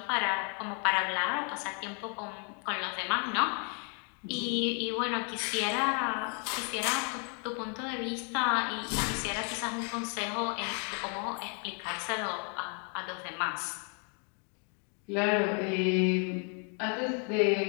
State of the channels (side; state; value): right; quieter; 39.7 dB